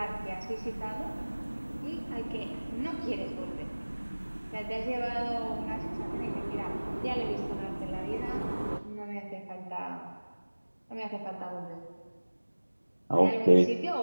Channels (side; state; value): both; inverted; correlation -1.00